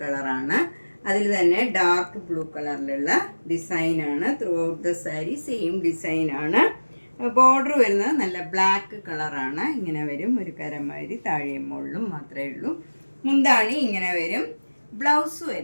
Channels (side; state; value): both; inverted; correlation -1.00